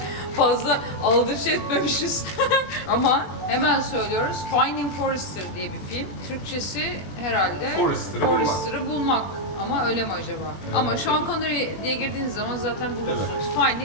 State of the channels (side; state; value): right; late; 20 ms